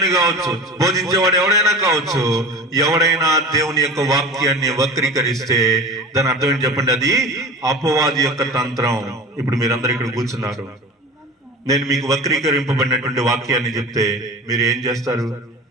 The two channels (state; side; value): normal; both; correlation 0.34